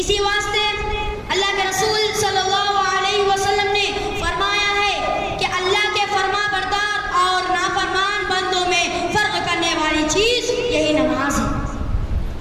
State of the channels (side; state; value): both; identical; correlation 1.00